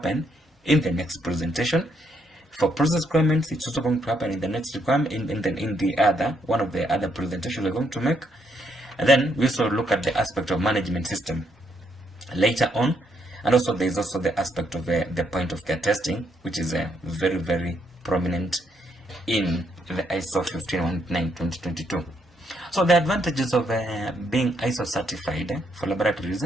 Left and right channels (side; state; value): both; normal; correlation 0.74